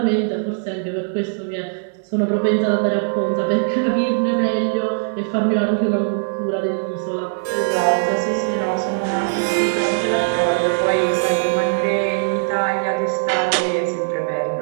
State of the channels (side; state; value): left; silent; digital silence